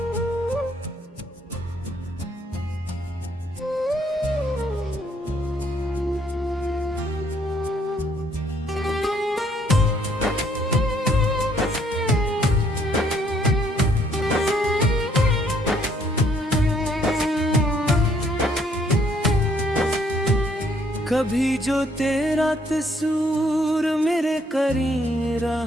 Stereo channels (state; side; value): normal; both; correlation 0.67